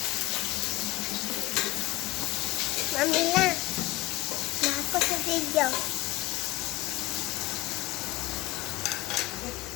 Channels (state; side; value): quieter; right; 19.2 dB